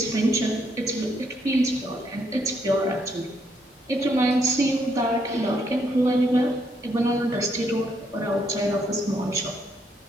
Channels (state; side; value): normal; both; correlation 0.73